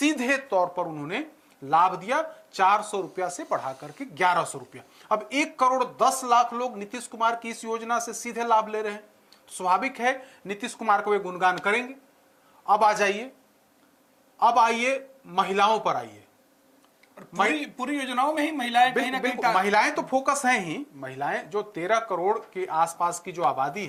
तौर पर उन्होंने लाभ दिया, 400 रुपया से बढ़ा करके 1100 रुपया। अब 1 करोड़ 10 लाख लोग नीतीश कुमार की इस योजना से सीधे लाभ ले रहे हैं। स्वाभाविक है नीतीश कुमार को वे गुणगान करेंगे। अब आइए महिलाओं पर आइए। पूरी योजनाओं में ही महिलाएं बिल्कुल महिलाएं तो फोकस हैं ही। महिलाएं जो 13 करोड़ के आसपास की जो आबादी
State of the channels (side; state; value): both; identical; correlation 1.00